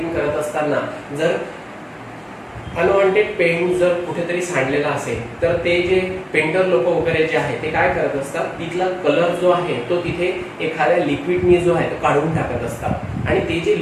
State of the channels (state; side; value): identical; both; correlation 1.00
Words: करत असताना जर अनवॉन्टेड पेंट जर कुठेतरी सांडलेला असेल तर ते जे पेंटर लोक वगैरे जे आहे ते काय करत असतात, तिथला कलर जो आहे तो तिथे एखाद्या लिक्विडनी जो आहे तो काढून टाकत असतात. आणि ते जे